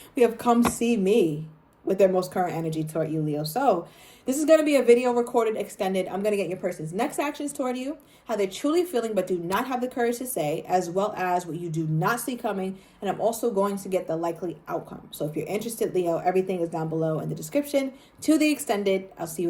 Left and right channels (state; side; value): identical; both; correlation 1.00